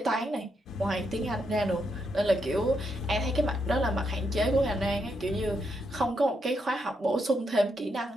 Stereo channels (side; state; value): both; normal; correlation 0.80